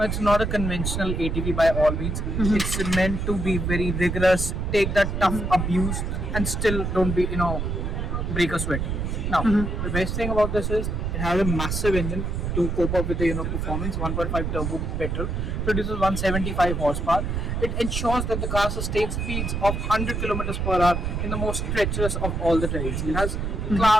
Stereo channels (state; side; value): noise; right; rumble, 2 dB below the sound